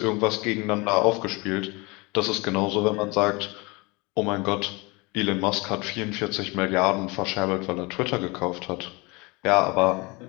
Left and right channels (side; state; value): right; quieter; 26.1 dB